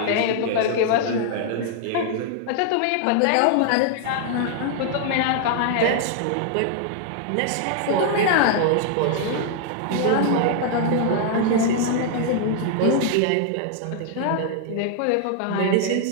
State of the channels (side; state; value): both; different; correlation 0.00